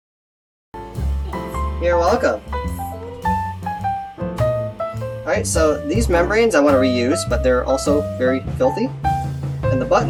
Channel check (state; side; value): identical; both; correlation 1.00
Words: You're welcome. Alright, so these membranes I want to reuse, but they're also very filthy. And the